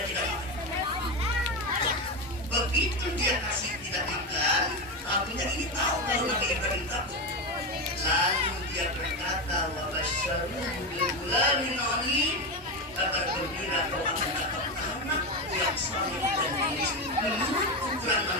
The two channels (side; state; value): both; normal; correlation 0.15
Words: tidak makan. Begitu dia kasih tidak makan, tahunya ini tahu kalau Nabi Ibrahim takut. Lalu dia berkata, wa basyaruhu bil ghulamin alim. Kabar gembira kau akan dapat anak yang saleh dan manis. Menurut ukuran